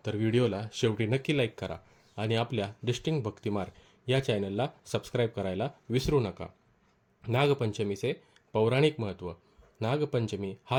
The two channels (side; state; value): both; identical; correlation 1.00